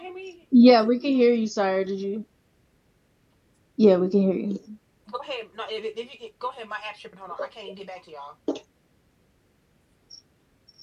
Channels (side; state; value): both; identical; correlation 1.00